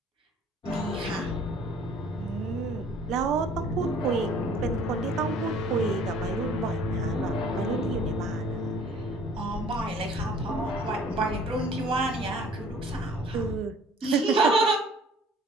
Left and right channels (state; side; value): normal; both; correlation 0.54